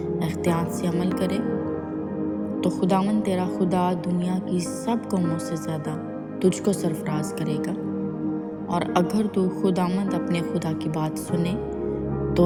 احتیاط سے عمل کرے، تو خداوند تیرا خدا دنیا کی سب قوموں سے زیادہ تجھ کو سرفراز کرے گا۔ اور اگر تو خداوند اپنے خدا کی بات سنے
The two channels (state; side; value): identical; both; correlation 1.00